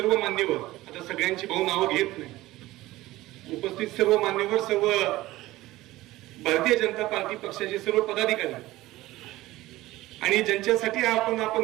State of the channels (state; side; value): quieter; left; 17.6 dB